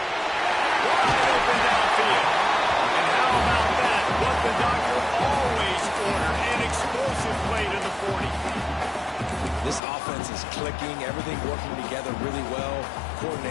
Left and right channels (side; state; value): right; drops out; at 9.8 s